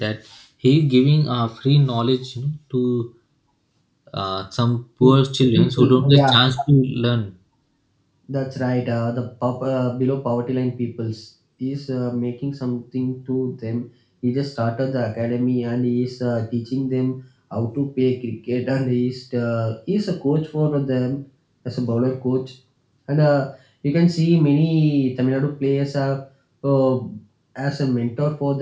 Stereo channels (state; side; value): identical; both; correlation 1.00